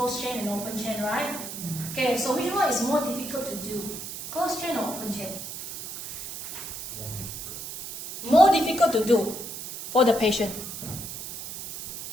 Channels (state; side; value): noise; right; hiss, 8 dB below the sound